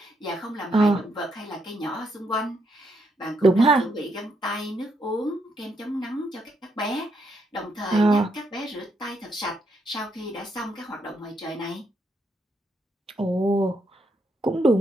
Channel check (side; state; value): both; normal; correlation 0.78